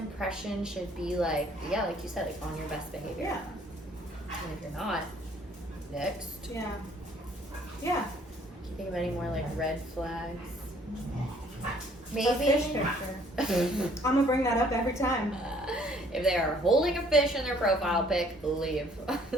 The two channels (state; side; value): normal; both; correlation 0.61